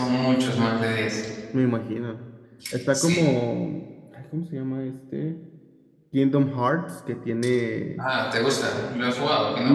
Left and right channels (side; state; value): both; identical; correlation 1.00